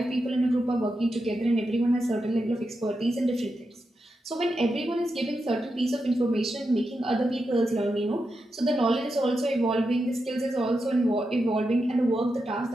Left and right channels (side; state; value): both; normal; correlation 0.87